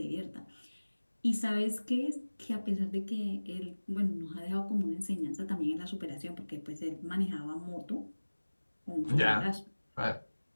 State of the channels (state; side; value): inverted; both; correlation -1.00